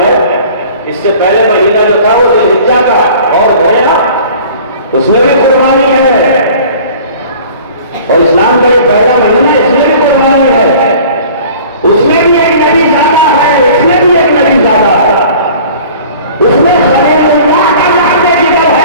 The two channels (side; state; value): both; inverted; correlation -0.46